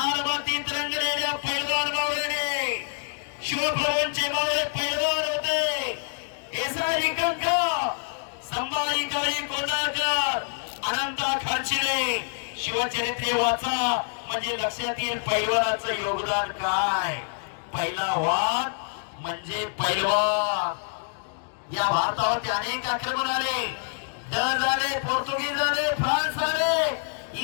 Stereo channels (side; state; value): right; silent; digital silence